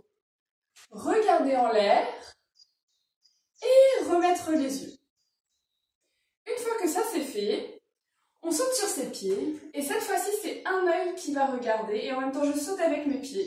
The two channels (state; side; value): identical; both; correlation 1.00